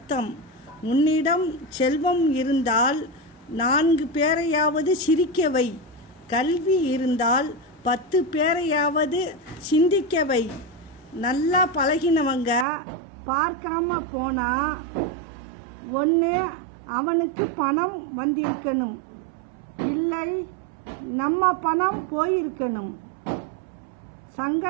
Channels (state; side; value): drops out; left; at 12.7 s